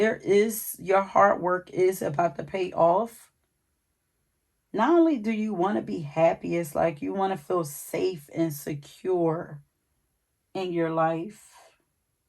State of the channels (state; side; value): identical; both; correlation 1.00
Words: is, your hard work is about to pay off. Not only do you want to be happy, it's like you want to feel safe and secure in your life.